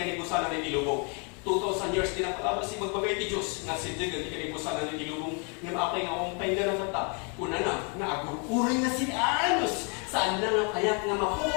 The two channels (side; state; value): right; quieter; 36.4 dB